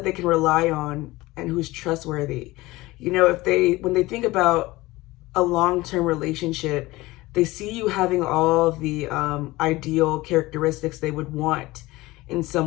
they can rely on and who's trustworthy. You know, when they think about a long-term relationship, they see you having all the ideal characteristics they would want in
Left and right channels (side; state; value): right; quieter; 19.8 dB